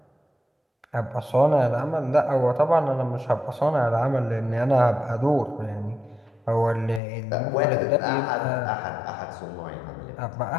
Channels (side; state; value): right; drops out; at 7.0 s